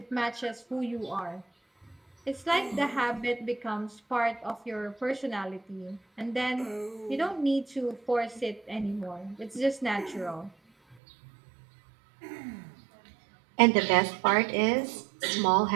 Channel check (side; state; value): left; drops out; at 11.0 s